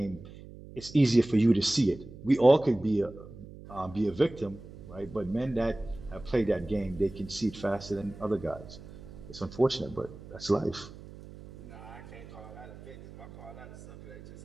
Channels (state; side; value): noise; right; hum, 16 dB below the sound